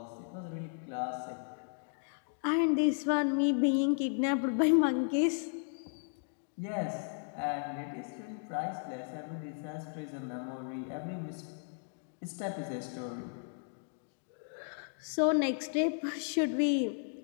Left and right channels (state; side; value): silent; right; digital silence